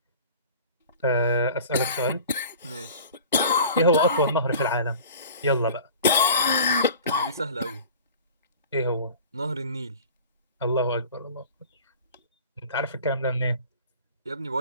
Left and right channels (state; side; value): inverted; both; correlation -0.42